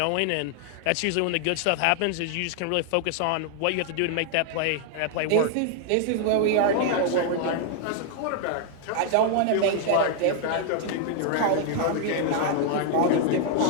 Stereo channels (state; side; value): different; both; correlation 0.00